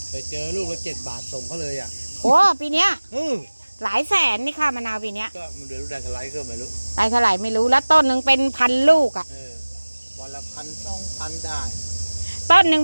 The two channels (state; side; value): inverted; both; correlation -1.00